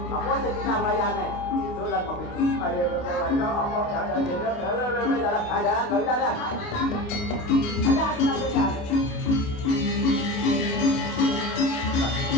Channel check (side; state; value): right; late; 29 ms